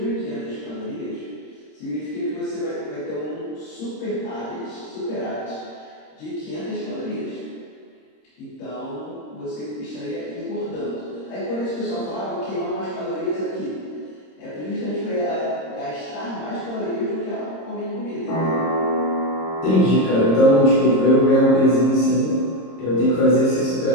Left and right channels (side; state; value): right; late; 26 ms